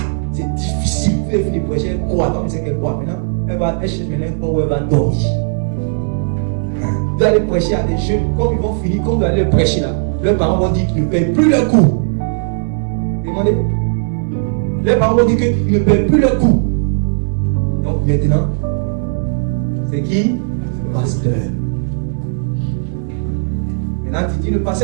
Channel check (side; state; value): left; silent; 63 dB below the other